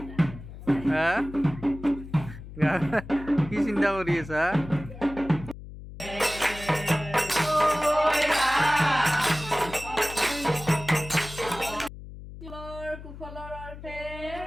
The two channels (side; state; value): left; noise; hum, 14 dB below the sound